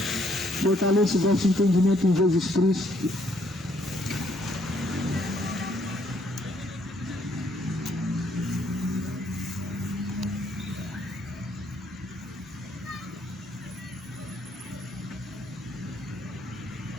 fortaleça o vosso entendimento em Jesus Cristo.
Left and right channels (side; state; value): both; normal; correlation 0.68